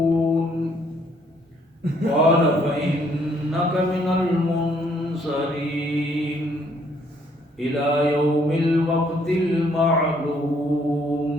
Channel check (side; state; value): both; normal; correlation 0.66